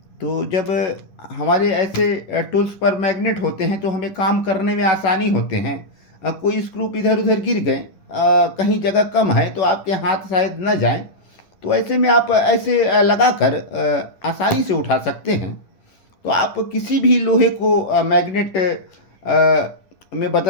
तो जब हमारे ऐसे टूल्स पर मैग्नेट होते हैं तो हमें काम करने में आसानी होते हैं। कोई स्क्रू इधर उधर गिर गए, कहीं जगह कम है तो आपके हाथ शायद न जाएं, तो ऐसे में आप ऐसे लगाकर आसानी से उठा सकते हैं। तो आप किसी भी लोहे को मैग्नेट में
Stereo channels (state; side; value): late; right; 11 ms